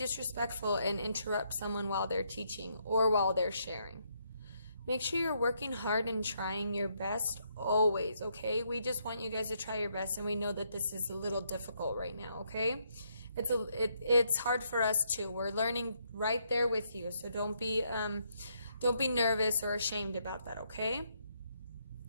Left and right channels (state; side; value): inverted; both; correlation -0.75